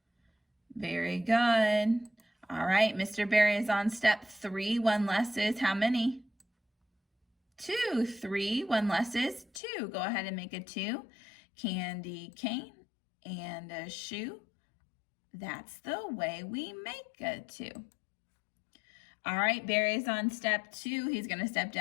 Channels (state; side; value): drops out; right; at 9.5 s